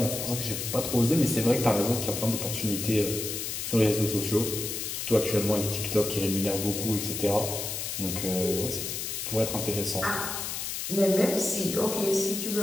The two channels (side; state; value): left; noise; hiss, 4 dB below the sound